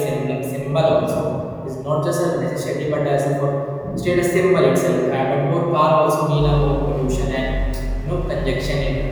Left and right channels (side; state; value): both; identical; correlation 1.00